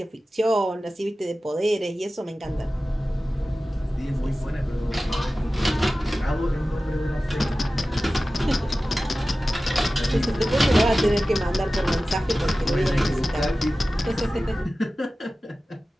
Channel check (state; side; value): normal; both; correlation 0.96